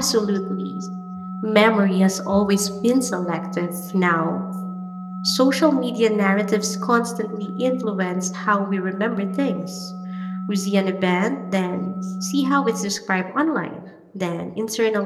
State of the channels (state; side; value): identical; both; correlation 1.00